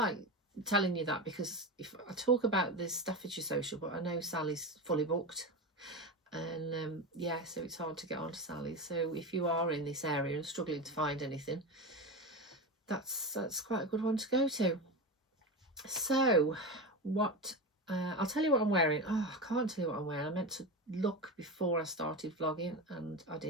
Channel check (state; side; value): normal; both; correlation 0.21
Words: telling you that because if I talk about this Staffordshire Sewcial, but I know Sally's fully booked, and yeah, so it's hard to get on to Sally. So if you are in this area and struggling to find anything, that's quite a good one to go to. So what I'll tell you what I'm wearing. Oh, I can't tell you what I'm wearing. I meant to look before I started vlogging and I